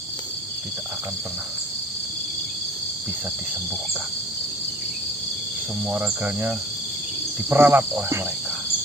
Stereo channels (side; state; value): both; normal; correlation 0.49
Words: tidak akan pernah bisa disembuhkan. Semua raganya diperalat oleh mereka.